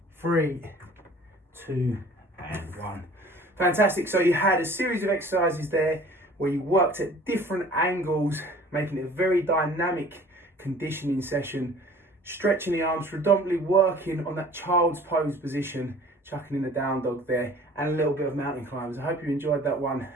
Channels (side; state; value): both; normal; correlation 0.48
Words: 3, 2, and 1. Fantastic. So you had a series of exercises there where you worked at different angles, making it a very dynamic conditioning session, stretching the arms, predominantly working on that child's pose position, chucking in the down dog there, and a little bit of mountain climbers. I hope you enjoyed that one,